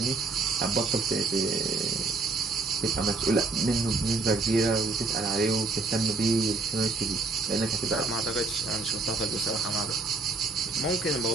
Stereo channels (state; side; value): quieter; left; 3.8 dB